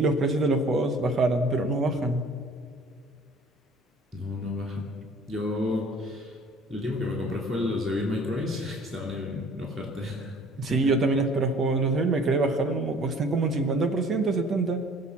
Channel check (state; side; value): normal; both; correlation 0.52